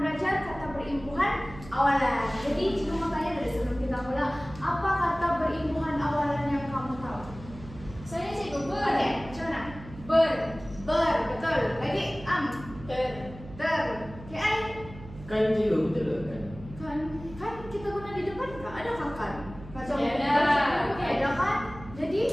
belajar kata berimbuhan awalan. Jadi cikgu mau tanya dari sebelum kita mulai, apa kata berimbuhan awalan yang kamu tahu? Saya cikgu ber. Oke, macam mana? Ber. Ber, betul. Lagi Ter. ter. KI Kan juga betul kan? kan kita guna di depan kah? Ada kan? Macam Ada. ada kan? Jadi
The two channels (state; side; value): noise; right; hum, 16 dB below the sound